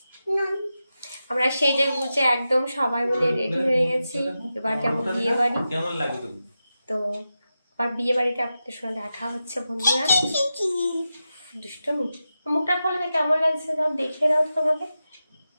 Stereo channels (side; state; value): both; inverted; correlation -0.91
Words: আমরা সেজে গুজে একদম সবাই মিলে রেডি হয়ে গেছি। এবার যাবো বিয়ে বাড়ি। কেমন লাগে তো? তো আর বিয়ে বাড়িতে আপনাদের সঙ্গে দেখা হচ্ছে বন্ধুরা। দুষ্টমি, মুখটা খোলা, কেমন লাগছে সব দেখে দাও তো আমাকে।